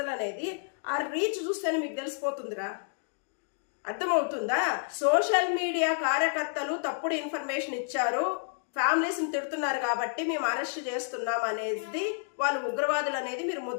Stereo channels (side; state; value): right; silent; digital silence